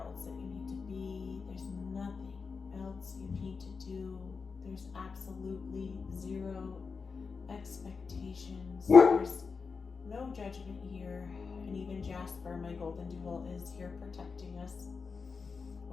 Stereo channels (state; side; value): quieter; right; 5.0 dB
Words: that you need to be. There's nothing else you need to do. There's absolutely 0 expectations. There's no judgment here. And even Jasper, my golden doodle, is here protecting us